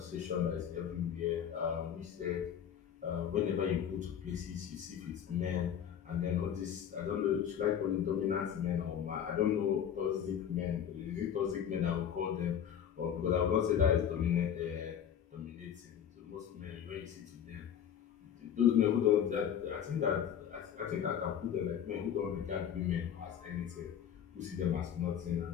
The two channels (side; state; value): right; quieter; 8.9 dB